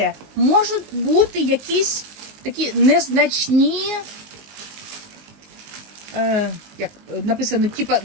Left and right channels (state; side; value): late; left; 19 ms